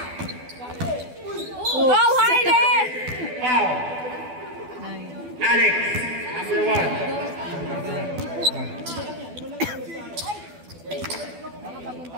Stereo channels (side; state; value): left; late; 12 ms